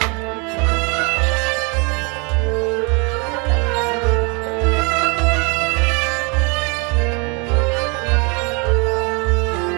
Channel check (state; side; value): quieter; left; 31.9 dB